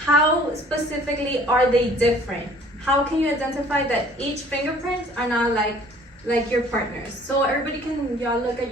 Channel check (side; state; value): both; normal; correlation 0.53